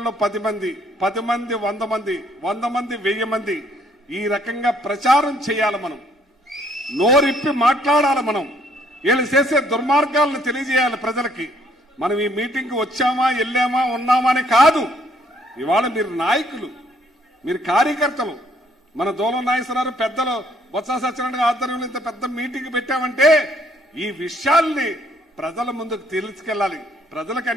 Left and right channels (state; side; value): normal; both; correlation 0.65